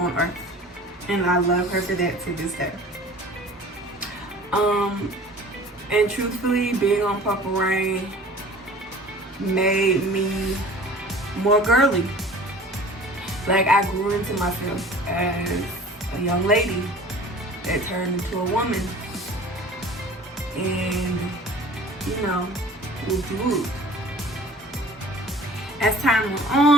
earth. And I love her for that to this day. And truthfully, being on Purple Rain made me more girly. Like, I grew into myself as a young lady that turned into a woman. And, you know, whoop. As time went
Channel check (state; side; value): normal; both; correlation 0.45